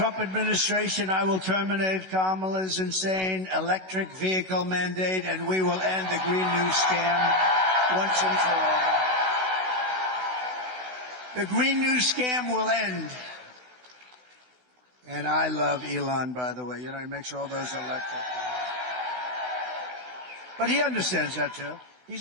administration, I will terminate Kamala's insane electric vehicle mandate, and we will end the Green New scam once and for all. The Green New scam will end. And I love Elon, by the way. You know, he makes all those electric. But he understands that, too.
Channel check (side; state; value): left; late; 16 ms